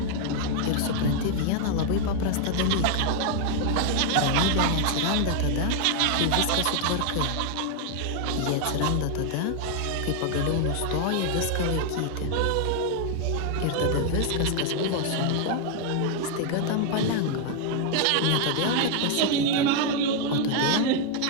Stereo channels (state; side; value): different; both; correlation 0.00